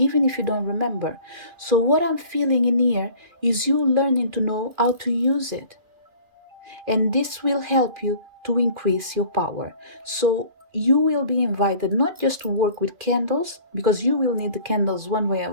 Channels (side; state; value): left; late; 2.4 ms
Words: if you don't remember. So, what I'm feeling in here is you learning to know how to use it, and this will help you to increase your power. So you will be invited not just to work with candles, because you will need the candles one way